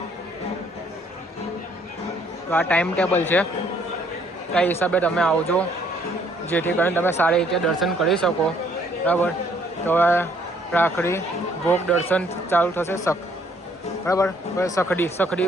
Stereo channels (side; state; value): both; normal; correlation 0.64